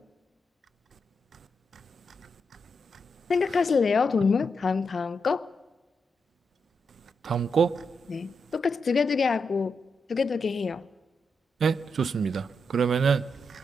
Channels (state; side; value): normal; both; correlation 0.83